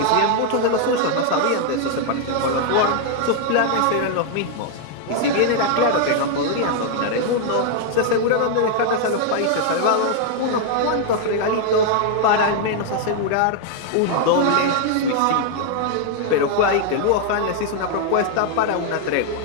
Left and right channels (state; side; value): different; both; correlation 0.00